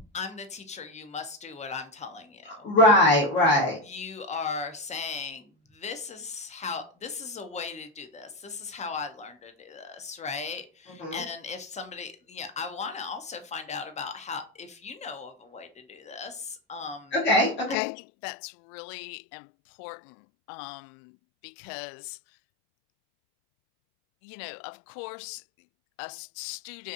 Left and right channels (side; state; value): right; drops out; at 17.8 s